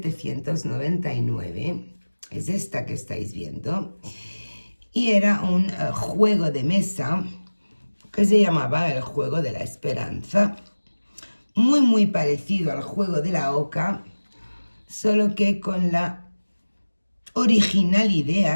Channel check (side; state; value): both; inverted; correlation -1.00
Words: Es esta que estáis viendo. Y era un juego de mesa que se llamaba el Juego de la Esperanza. Muy parecido al juego de la oca, solo que con la original